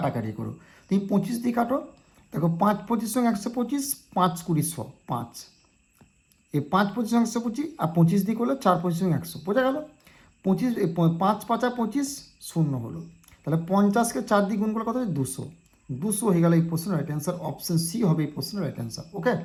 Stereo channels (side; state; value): both; identical; correlation 1.00